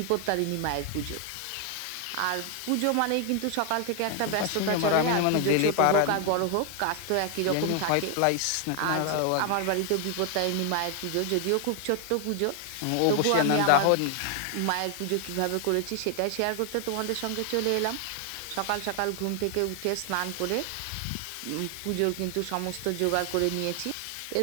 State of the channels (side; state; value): both; different; correlation 0.00